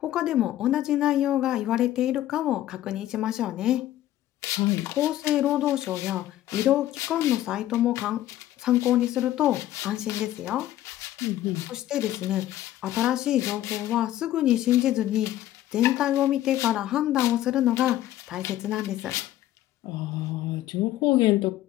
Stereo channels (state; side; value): quieter; right; 13.6 dB